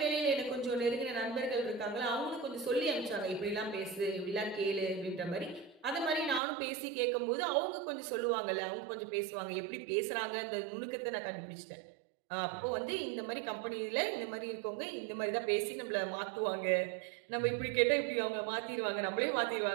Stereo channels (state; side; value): drops out; left; at 6.4 s